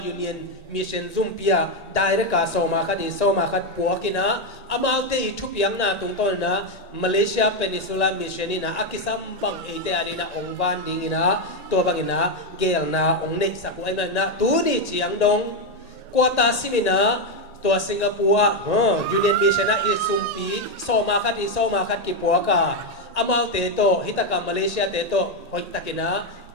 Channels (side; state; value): right; late; 1.8 ms